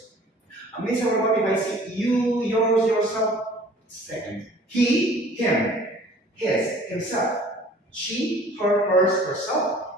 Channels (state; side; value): normal; both; correlation 0.50